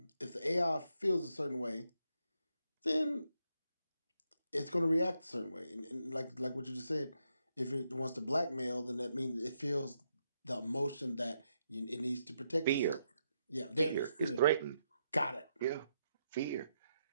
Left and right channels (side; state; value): both; inverted; correlation -0.80